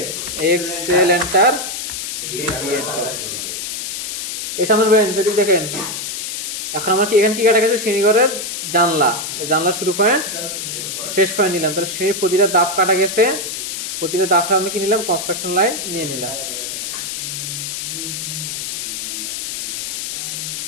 এক্সেল এন্টার, এই সামনে যদি দেখেন এখন আমার কি এখানে কি কাটা গেছে, শ্রেণীঘরের জানলা, জানলা শুরু পয়েন্ট শেষ পয়েন্ট নিলাম, তাহলে শ্রেণীর প্রতিটা দাব কাটা গেছে, প্রতিটা দাব আমি কি নিলাম কনস্ট্রাকশন লাইন নিয়ে নিলাম।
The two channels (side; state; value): left; noise; hiss, 5 dB below the sound